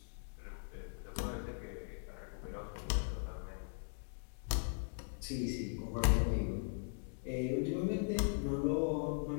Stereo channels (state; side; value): silent; right; digital silence